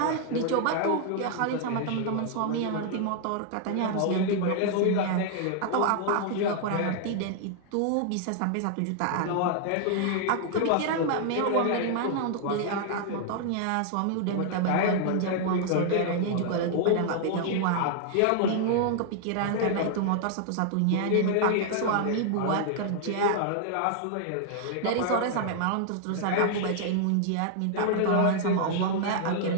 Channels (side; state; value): both; different; correlation 0.00